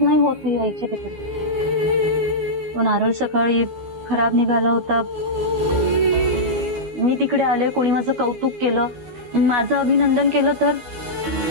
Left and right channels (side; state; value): left; late; 12 ms